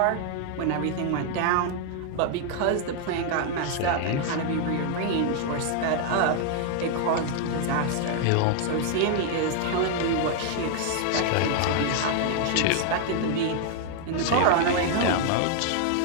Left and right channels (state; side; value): different; both; correlation 0.00